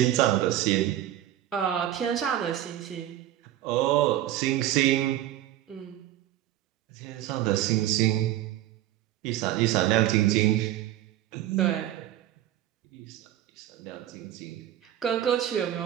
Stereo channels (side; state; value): left; quieter; 13.1 dB